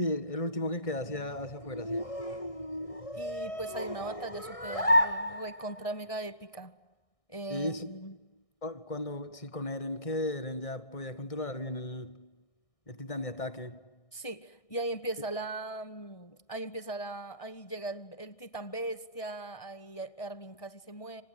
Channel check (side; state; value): right; late; 1.6 ms